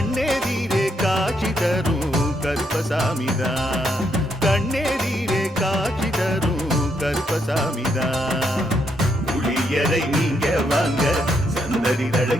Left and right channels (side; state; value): both; normal; correlation 0.76